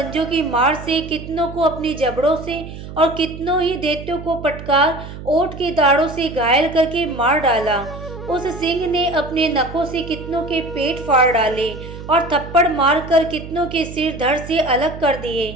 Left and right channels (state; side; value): noise; right; hum, 12 dB below the sound